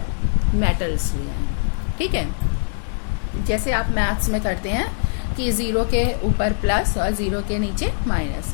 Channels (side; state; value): right; silent; digital silence